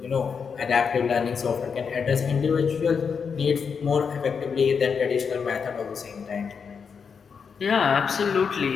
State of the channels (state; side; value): quieter; right; 6.1 dB